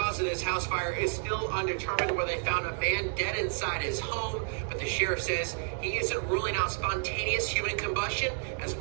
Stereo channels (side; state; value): left; silent; 57 dB below the other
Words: of this house fire is still undetermined, where they found a man dead inside his home, but the sheriff says he isn't ruling out spontaneous human combustion as